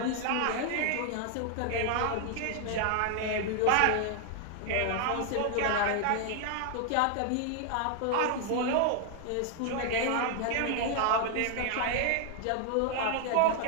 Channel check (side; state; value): both; different; correlation 0.00